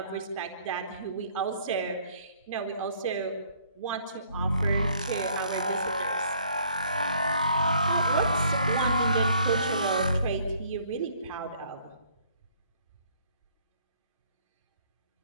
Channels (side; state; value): both; inverted; correlation -0.62